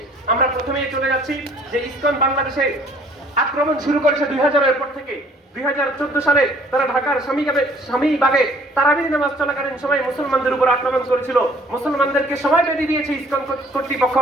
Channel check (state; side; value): normal; both; correlation 0.57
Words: আমরা প্রথমেই চলে যাচ্ছি যে ইসকন বাংলাদেশে আক্রমণ শুরু করেছে 2000-এর পর থেকে। 2014 সালে তারা ঢাকার স্বামীবাগে তারাবির নামাজ চলাকালীন সময় মুসলমানদের উপর আক্রমণ করেছিল। মুসলমানদেরকে সময় বেঁধে দিয়েছে ইসকন কর্তৃপক্ষ